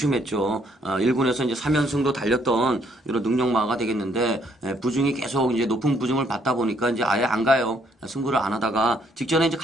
1군에서 이제 3연승도 달렸던 이런 능력마가 되겠는데 부중이 계속 이제 높은 부중을 받다 보니까 이제 아예 안 가요. 승부를 안 하다가 직전에 이제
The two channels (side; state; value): both; normal; correlation 0.68